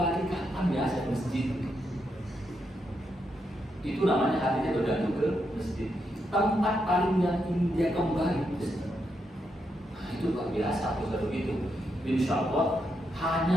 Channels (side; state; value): both; normal; correlation 0.82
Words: kapan ya saya ke masjid. Itu namanya hatinya bergantung ke masjid. Tempat paling yang ingin dia kembali masjid. Nah, itu luar biasa kalau begitu. Insya Allah